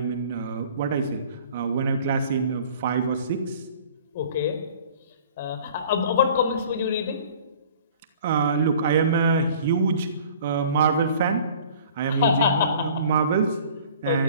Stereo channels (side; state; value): both; inverted; correlation -0.49